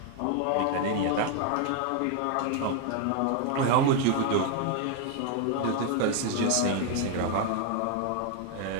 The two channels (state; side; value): different; both; correlation 0.00